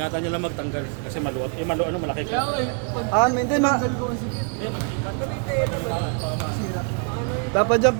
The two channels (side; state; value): left; quieter; 39.0 dB